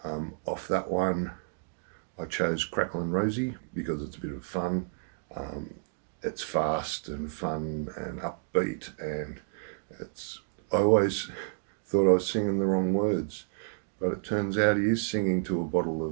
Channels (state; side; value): silent; left; digital silence